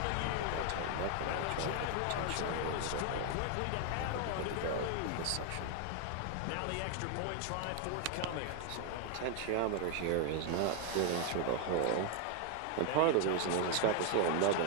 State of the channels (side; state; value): both; different; correlation 0.00